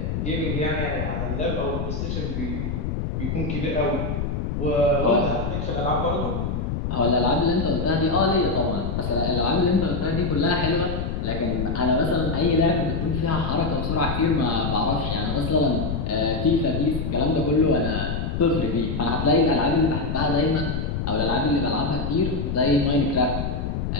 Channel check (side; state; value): left; noise; rumble, 2 dB below the sound